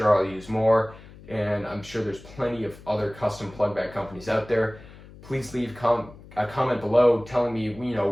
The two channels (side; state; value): left; noise; hum, 19 dB below the sound